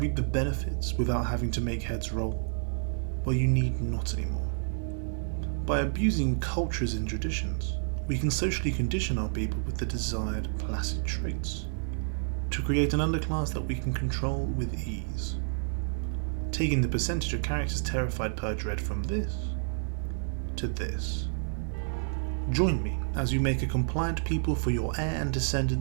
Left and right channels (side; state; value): left; silent; 58 dB below the other